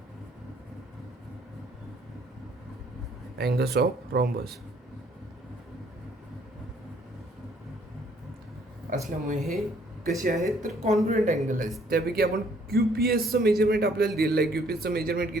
angles of rhombus असल्यामुळे हे कसे आहेत तर कॉन्ग्रुएंट अँगल आहेत. त्यापैकी आपण QPSचं मेजरमेंट आपल्याला दिलेलं आहे. QPSचं मेजरमेंट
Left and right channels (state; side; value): normal; both; correlation 0.63